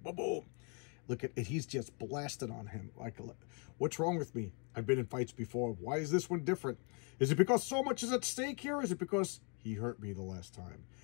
Boom, boom. Look at it. He's just blasted on him. Like, what's wrong with me? I've been in fights before. Why is this one different? Is it because so much is at stake here? Is it because he hurt me the last time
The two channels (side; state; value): right; quieter; 36.9 dB